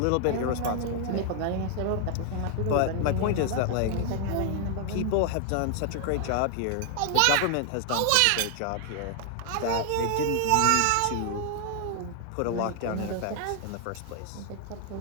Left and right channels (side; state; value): both; different; correlation 0.00